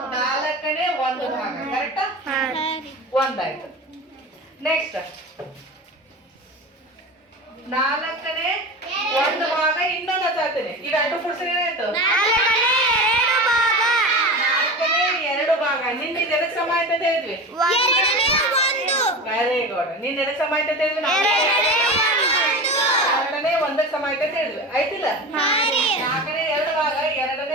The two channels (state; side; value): normal; both; correlation 0.29